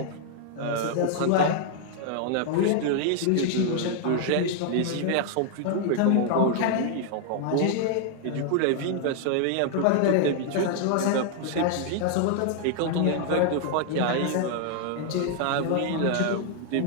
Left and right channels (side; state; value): both; different; correlation 0.00